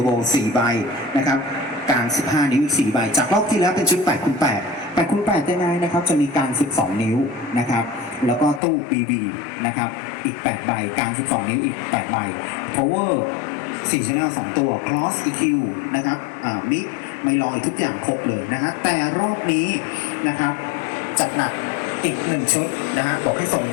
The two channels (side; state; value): right; drops out; at 8.6 s